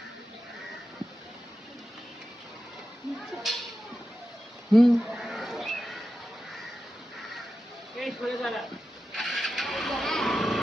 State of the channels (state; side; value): normal; both; correlation 0.91